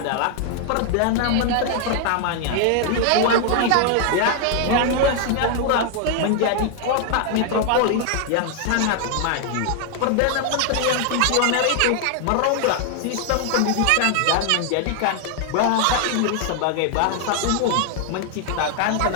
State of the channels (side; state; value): both; different; correlation 0.00